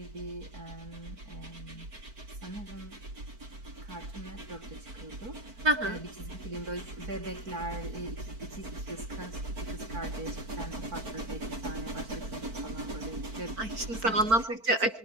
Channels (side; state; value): left; late; 4.5 ms